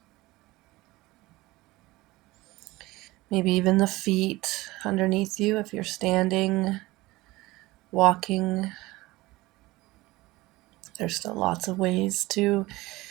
Maybe even the feet underneath you if you're standing, walking. There's still lots of ways to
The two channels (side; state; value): left; quieter; 19.8 dB